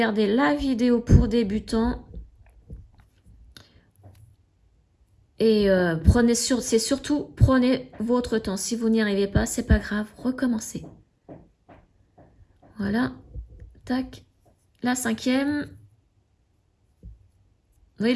la vidéo pour débutants. Et prenez votre temps. Si vous n'y arrivez pas, c'est pas grave, recommencez. Voilà, tac, la cinquième. Oui,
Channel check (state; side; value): identical; both; correlation 1.00